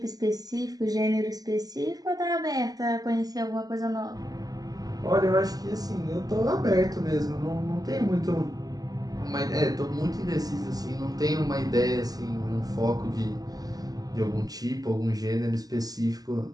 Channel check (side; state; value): left; late; 0.18 ms